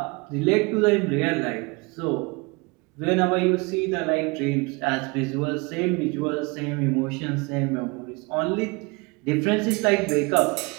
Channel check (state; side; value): quieter; left; 27.7 dB